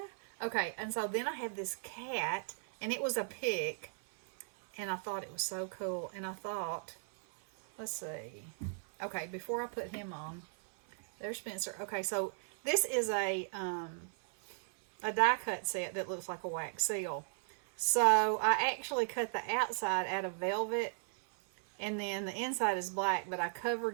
Okay, and so then I have this cat, and it was a pick, and I thought it was so cool. And I thought, let's see. Okay, before I put him on, there's Spencer. Okay, so this is a die cut set that looks like a wax seal. So I actually cut the outside out of velvet, and then the inside is black, but I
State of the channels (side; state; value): left; silent; 54 dB below the other